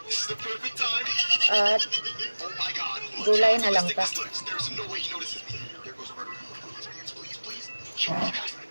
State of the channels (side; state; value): both; inverted; correlation -1.00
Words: at gulay na langka.